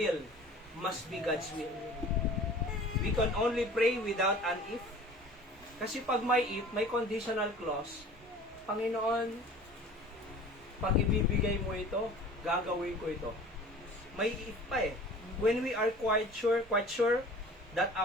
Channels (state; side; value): normal; both; correlation 0.44